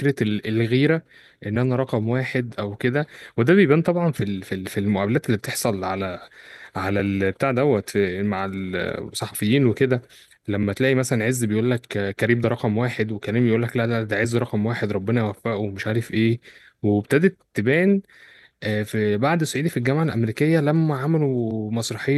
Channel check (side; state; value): both; identical; correlation 1.00